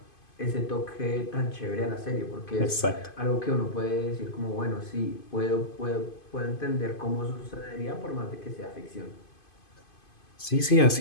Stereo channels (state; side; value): late; right; 2.5 ms